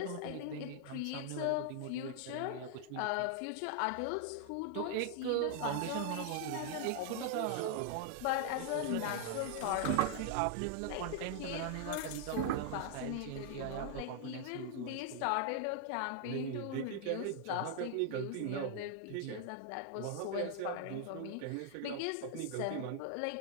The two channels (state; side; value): different; both; correlation 0.00